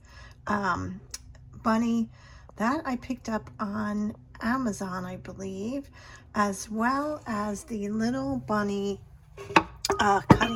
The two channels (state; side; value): identical; both; correlation 1.00